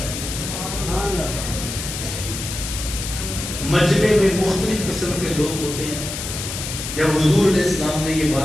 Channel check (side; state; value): left; noise; hiss, 6 dB below the sound